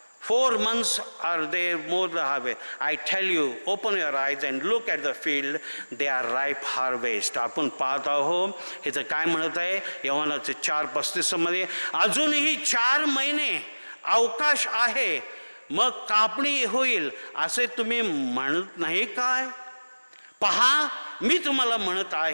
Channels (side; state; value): both; inverted; correlation -1.00